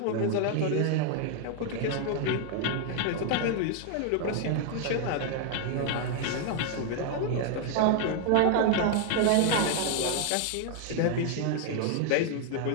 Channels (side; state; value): both; different; correlation 0.00